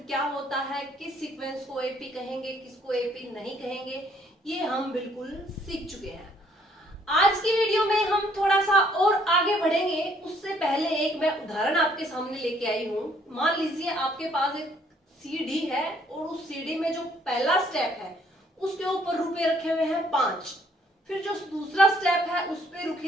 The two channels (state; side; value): normal; both; correlation 0.64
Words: क्या होता है, किस सीक्वेंस को एपी कहेंगे, किसको एपी नहीं कहेंगे, ये हम बिल्कुल सीख चुके हैं। आज की वीडियो में हम थोड़ा सा और आगे बढ़ेंगे। उससे पहले एक मैं उदाहरण आपके सामने लेके आई हूँ। मान लीजिए आपके पास एक सीडी है और उस सीडी में जो पहला स्टेप है उसके ऊपर रुपए रखे हुए हैं 5, फिर जो दूसरा स्टेप है उस पे